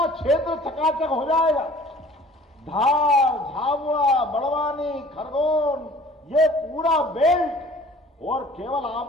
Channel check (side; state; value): both; normal; correlation 0.49